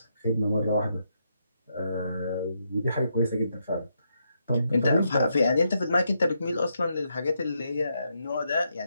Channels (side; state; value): both; inverted; correlation -0.80